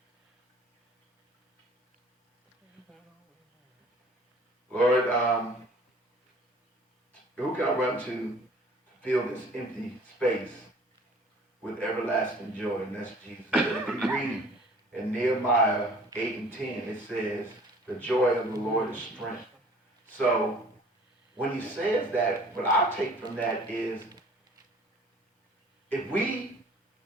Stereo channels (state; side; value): normal; both; correlation 0.50